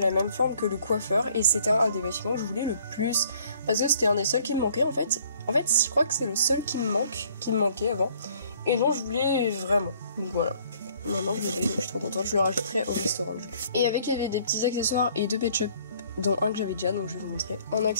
même forme que le coiffeur. Et c'était un des bâtiments que je voulais le plus. Parce que c'était un des seuls qui me manquait en fait. En fait je crois que c'est le seul qui me manquait avant. Et dont je voulais vraiment. Donc voilà. Maintenant je l'ai, donc je suis trop contente, je le rajouterai au restaurant du coup. Et avec il y avait des petits accessoires et 2 Pet Shop, dont un que j'avais déjà donc je vais vous montrer. En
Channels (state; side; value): inverted; both; correlation -0.60